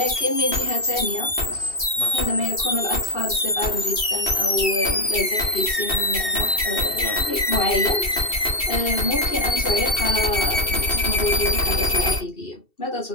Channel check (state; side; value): late; right; 2.7 ms